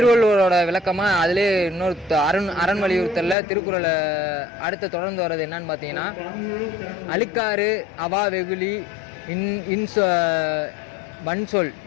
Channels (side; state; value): right; drops out; at 3.4 s